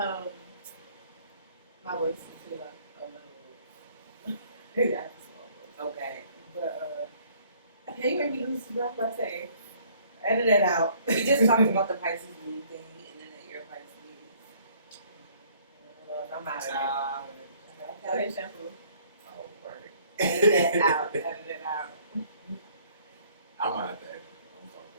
my voice is too like a little. Yeah, small voice. Okay. But okay, you made me lose the breath by saying. Edit it out. We just talked about the Pisces moon thing, and then that you're Pisces. I'm out of it. Okay. Okay, shampoo. Oh, right. Edit it out. Edit it out. I'm out of that.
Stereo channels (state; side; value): inverted; both; correlation -0.59